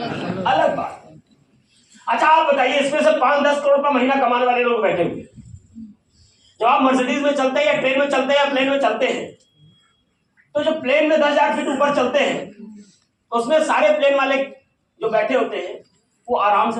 बात है। अच्छा, आप बताइए, इसमें से 5-10 करोड़ रुपया महीना कमाने वाले लोग बैठे हुए, जब आप मर्सिडीज में चलते हैं या ट्रेन में चलते हैं या प्लेन में चलते हैं, तो जो प्लेन में 10,000 फीट ऊपर चलते हैं, उसमें सारे प्लेन वाले जो बैठे होते हैं वो आराम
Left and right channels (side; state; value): both; identical; correlation 1.00